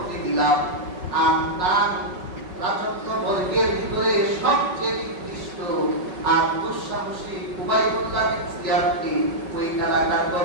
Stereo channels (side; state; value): left; late; 5.4 ms